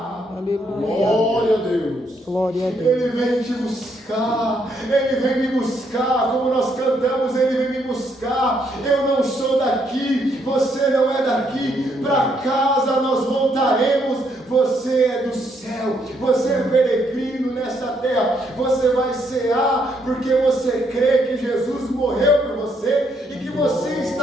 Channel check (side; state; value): both; normal; correlation 0.73